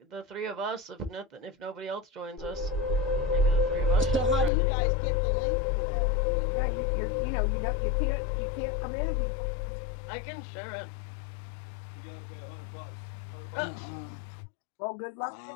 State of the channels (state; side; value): drops out; right; at 4.5 s